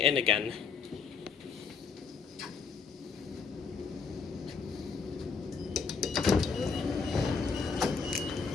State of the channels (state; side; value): quieter; right; 5.5 dB